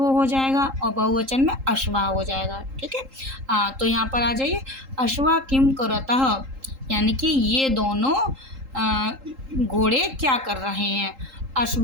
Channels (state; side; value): late; left; 3.8 ms